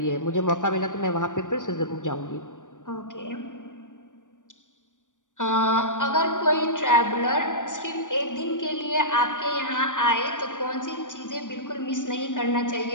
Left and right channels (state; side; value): late; right; 0.87 ms